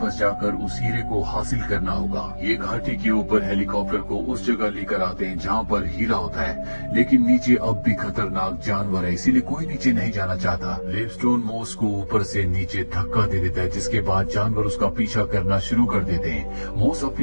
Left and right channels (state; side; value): inverted; both; correlation -1.00